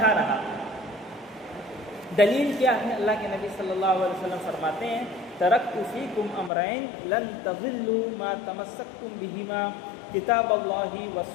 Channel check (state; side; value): drops out; right; at 6.5 s